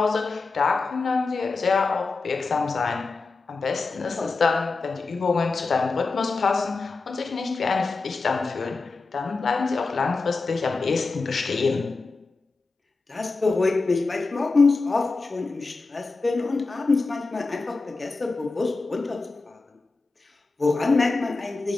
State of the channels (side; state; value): right; quieter; 3.9 dB